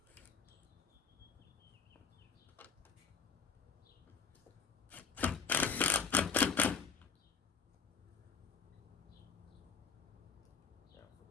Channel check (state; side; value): quieter; right; 5.7 dB